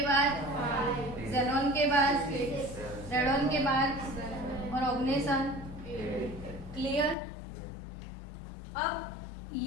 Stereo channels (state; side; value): drops out; right; at 7.2 s